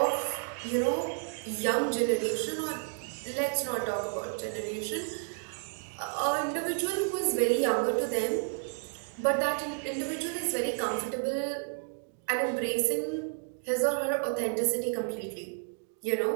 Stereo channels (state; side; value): silent; left; 57 dB below the other